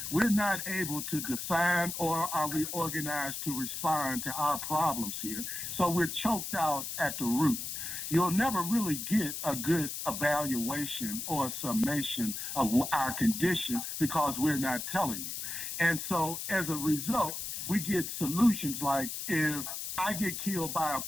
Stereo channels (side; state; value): left; noise; hiss, 5 dB below the sound